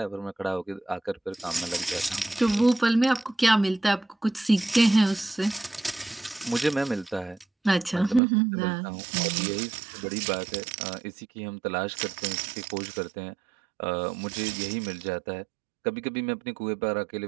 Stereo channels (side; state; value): left; drops out; at 8.2 s